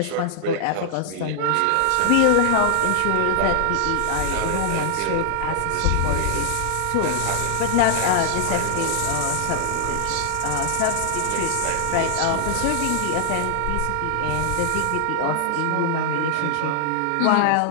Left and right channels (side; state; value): both; different; correlation -0.01